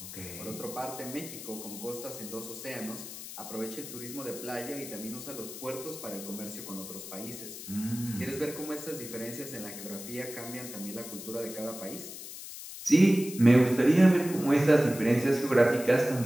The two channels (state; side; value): noise; left; hiss, 11 dB below the sound